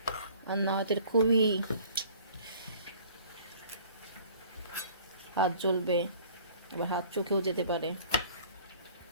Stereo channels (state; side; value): inverted; both; correlation -0.51